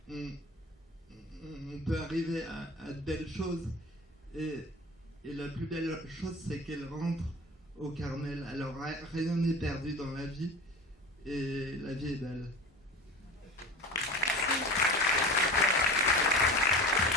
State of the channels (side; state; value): both; normal; correlation 0.34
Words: on peut arriver à de belles choses. Et la plus belle chose, c'est qu'elle rentre au Carmel. Alors rien n'est perdu dans la vie et la vie est belle.